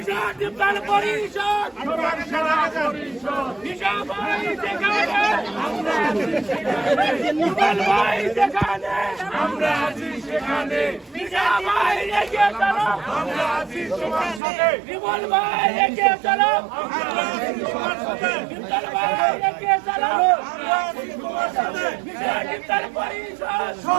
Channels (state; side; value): drops out; left; at 14.4 s